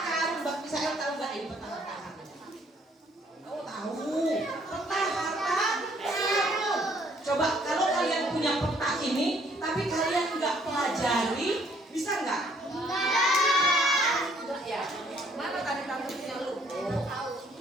Coba kalau kalian punya peta ini, tapi kalian nggak pelajari, bisa nggak? Enggak ya. Mana tadi kamu punya lu?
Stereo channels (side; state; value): both; normal; correlation 0.64